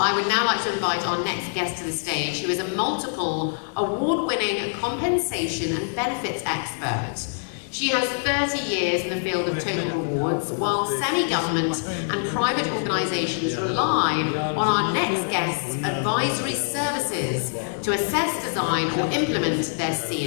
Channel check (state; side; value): silent; right; digital silence